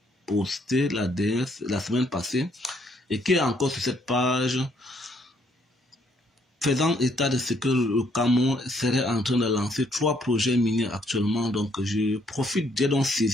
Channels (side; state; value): both; normal; correlation 0.69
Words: postée la semaine passée et qui est encore sur cette page, faisant état de ce que le Cameroun serait en train de lancer 3 projets miniers actuellement. Donc, j'ai donc